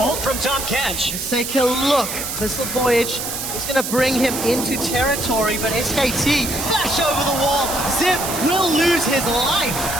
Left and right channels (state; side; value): noise; right; hiss, 5 dB below the sound